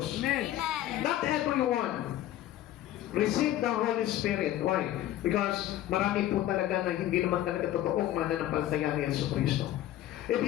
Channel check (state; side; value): quieter; right; 13.4 dB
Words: Amen. Not everyone receive the Holy Spirit. Why? Because marami po talaga na hindi naman talaga totoong mananampalataya ni Jesucristo. If